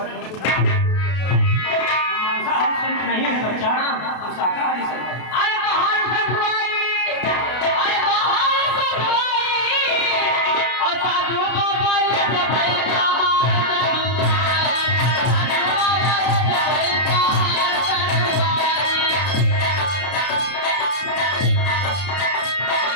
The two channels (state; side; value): late; right; 32 ms